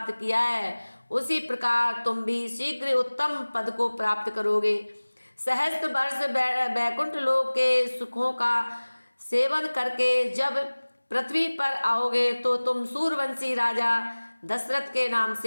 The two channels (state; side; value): inverted; both; correlation -1.00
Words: किया है, उसी प्रकार तुम भी शीघ्र उत्तम पद को प्राप्त करोगे। सहस्त्र वर्ष वैकुंठ लोक के सुखों का सेवन करके जब पृथ्वी पर आओगे तो तुम सूर्यवंशी राजा दशरथ के नाम